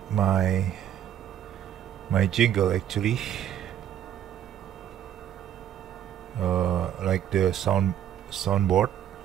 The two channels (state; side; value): quieter; left; 10.5 dB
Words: my jingle actually, like the soundboard